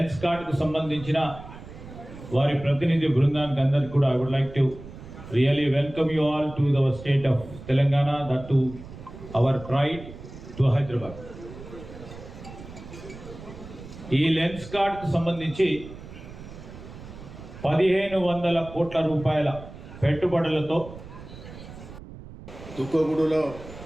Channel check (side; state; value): right; noise; rumble, 15 dB below the sound